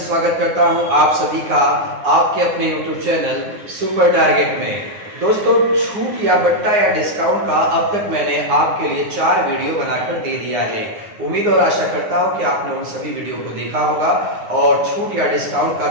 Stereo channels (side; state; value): left; late; 9.7 ms